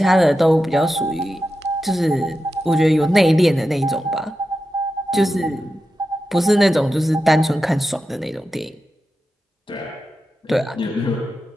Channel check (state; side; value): normal; both; correlation 0.91